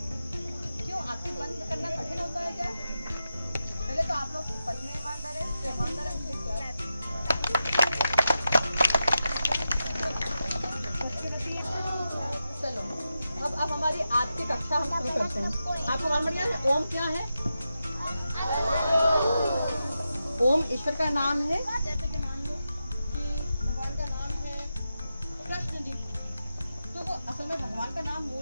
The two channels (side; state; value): both; inverted; correlation -0.90